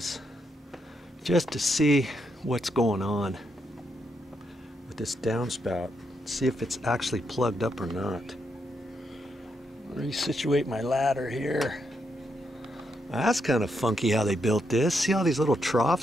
just to see what's going on with this downspout. See if it's actually plugged up or not. Let me situate my ladder here. That's kind of funky how they built this. See all these little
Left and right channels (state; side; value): normal; both; correlation 0.80